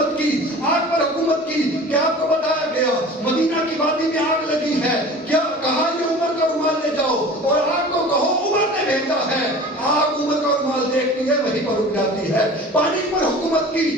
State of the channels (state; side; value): normal; both; correlation 0.40